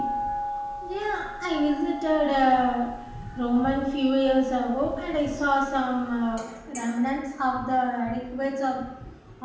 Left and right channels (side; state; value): both; identical; correlation 1.00